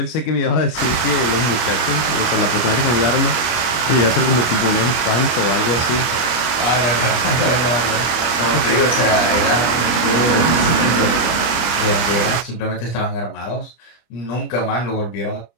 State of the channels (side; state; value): right; late; 25 ms